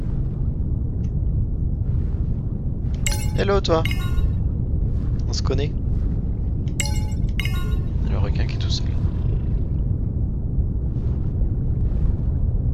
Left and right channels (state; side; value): identical; both; correlation 1.00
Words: Hello toi. On se connaît. Le requin qui est tout seul.